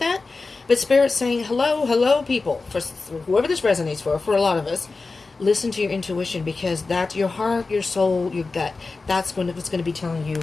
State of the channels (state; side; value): quieter; right; 3.9 dB